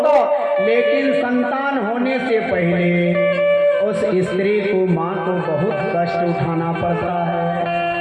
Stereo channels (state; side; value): identical; both; correlation 1.00